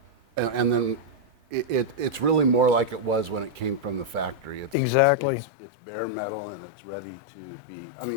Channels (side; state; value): right; drops out; at 4.8 s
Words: and then it's really more like it was when it came from the factory. It's bare metal and it's ready to be. I